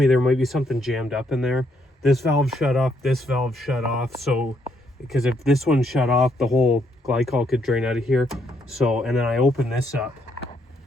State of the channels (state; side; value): normal; both; correlation 0.73